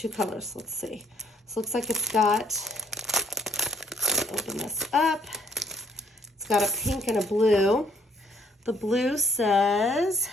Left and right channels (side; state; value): both; normal; correlation 0.66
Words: colors. Let's see. So it looks like it's got, open this up. It's got a pink and a blue. The blue says,